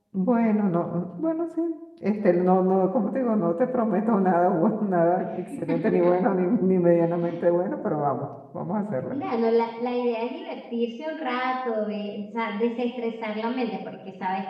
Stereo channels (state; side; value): identical; both; correlation 1.00